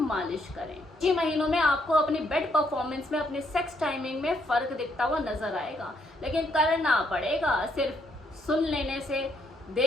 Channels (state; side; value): normal; both; correlation 0.73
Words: करें। 6 महीनों में आपको अपनी बेड परफॉर्मेंस में, अपने सेक्स टाइमिंग में फर्क दिखता हुआ नजर आएगा, लेकिन करना पड़ेगा। सिर्फ सुन लेने से,